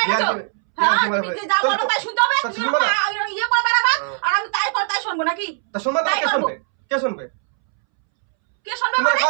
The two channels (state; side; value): silent; left; 66 dB below the other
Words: গেছো? হ্যাঁ, ইয়ার্কি মারা তুমি পাই- যে যা বলো তাহলে- তাই শুনতে হবে, তা তুমি শুনবা না? ইয়ে করে বেড়াবা, আর আমি তাই করে তাই শুনবো নাকি? তা শুনবা না, তাই কে করবো। শুনবে? কে শুনবে? কে শুনবে তোমার মানে?